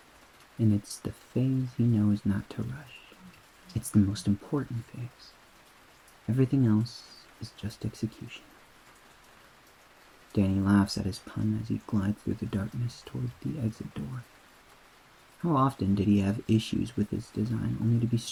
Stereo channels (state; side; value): identical; both; correlation 1.00